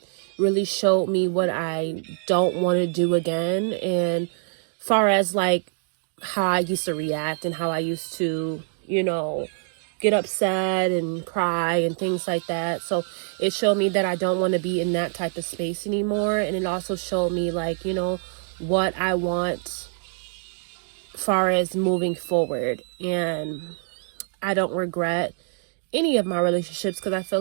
really showed me what I don't want to do again. And far as how I used to react and how I used to, get upset and cry and things like that. So it showed me that I don't want to be in that type of space anymore. And it also showed me what I want far as moving forward. And I don't regret any of my relationships because I feel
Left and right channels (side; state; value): left; silent; digital silence